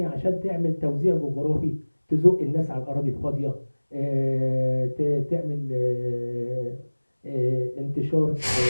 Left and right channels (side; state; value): both; inverted; correlation -1.00